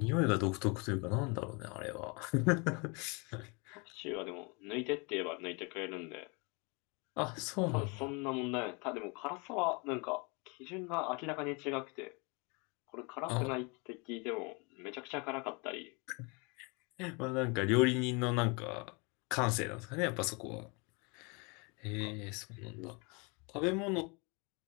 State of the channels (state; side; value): quieter; right; 30.8 dB